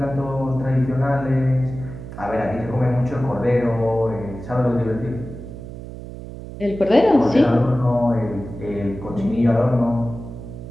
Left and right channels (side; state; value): right; noise; hum, 12 dB below the sound